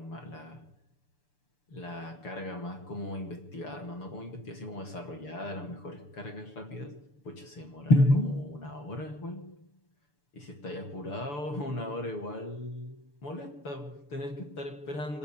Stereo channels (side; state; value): right; late; 6.9 ms